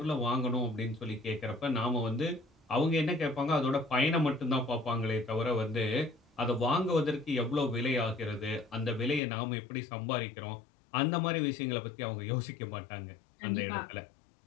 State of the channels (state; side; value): drops out; right; at 9.2 s